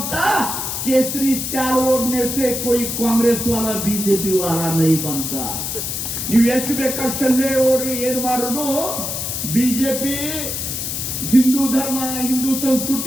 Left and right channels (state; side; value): noise; left; hiss, 3 dB below the sound